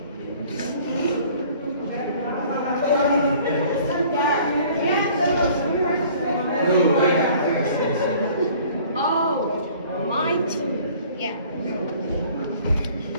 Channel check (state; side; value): inverted; both; correlation -0.52